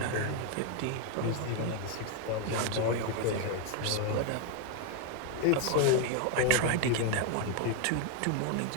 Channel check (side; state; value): both; different; correlation 0.01